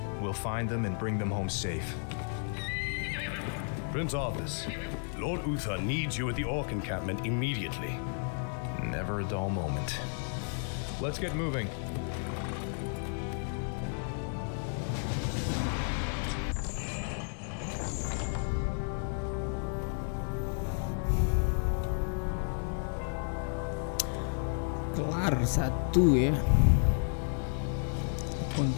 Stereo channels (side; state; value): right; silent; 56 dB below the other